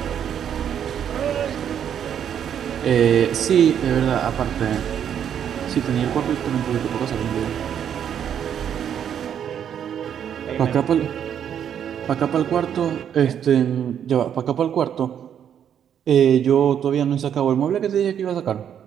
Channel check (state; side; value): quieter; left; 9.0 dB